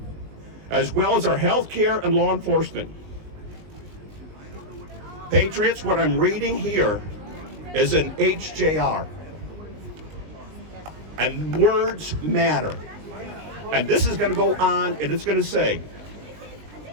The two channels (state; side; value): late; left; 19 ms